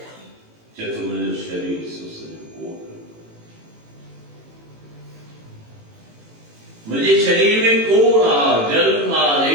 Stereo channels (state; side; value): late; left; 18 ms